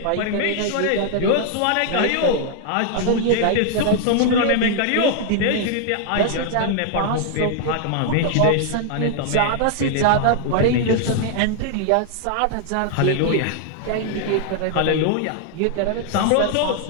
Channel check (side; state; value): both; different; correlation 0.00